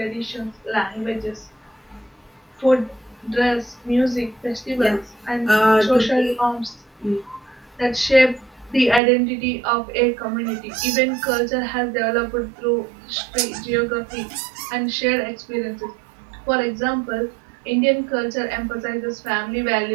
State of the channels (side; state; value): left; drops out; at 9.0 s